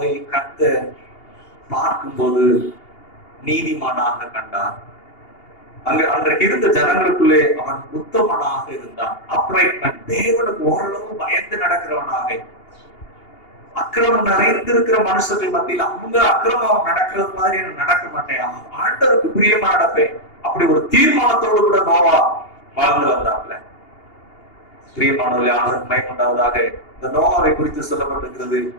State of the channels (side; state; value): right; late; 2.8 ms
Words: கர்த்தர் பார்க்கும்போது நீதிமானாக கண்டார். அன்றைக்கு இருந்த ஜனங்களுக்குள்ளே அவன் உத்தமனாக இருந்தான். அப்ரைட்மென்ட், தேவனுக்கு ஓரளவு பயந்து நடக்கிறவனாக. அக்கிரமம் நிறைந்திருக்கிற மனுஷர்கள் மத்தியில் அவங்க அக்கிரமம் நடக்கிறது மாதிரி நடக்க மாட்டேன், ஆண்டவருக்கு பிரியமா நடப்பேன், அப்படி ஒரு தீர்மானத்தோடு கூட நோவா வாழ்ந்து வந்தாப்ல. பிரியமானவர்களே, ஆண்டவருக்கு மகிமையுண்டாவதாக. இந்த நோவாவை குறித்து சொல்லப்பட்டிருக்கிறது,